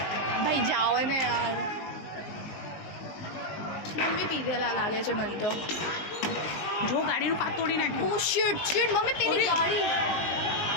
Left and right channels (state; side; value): late; right; 20 ms